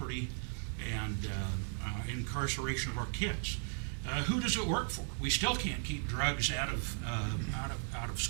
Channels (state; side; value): silent; left; 53 dB below the other